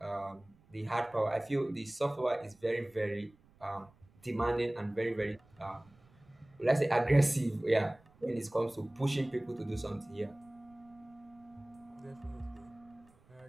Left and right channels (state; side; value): noise; right; rumble, 29 dB below the sound